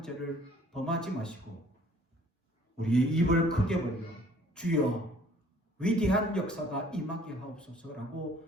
죄를 범하지 마시고 우리의 입을 크게 벌려 주여 위대한 역사가 임하게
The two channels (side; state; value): both; normal; correlation 0.56